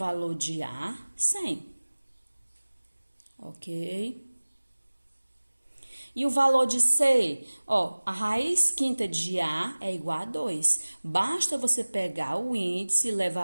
de A? 100. Ok? E o valor de C? Ó, a raiz quinta de A é igual a 2. Basta você pegar o índice e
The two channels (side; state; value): both; inverted; correlation -1.00